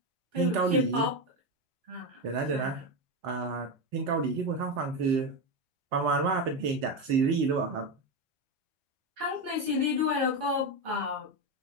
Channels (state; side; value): late; left; 4.4 ms